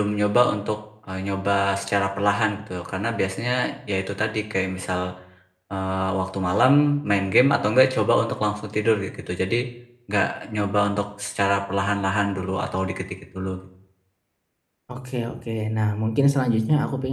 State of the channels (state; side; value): identical; both; correlation 1.00